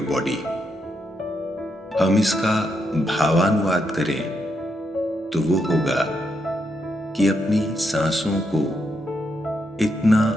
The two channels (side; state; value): both; normal; correlation 0.81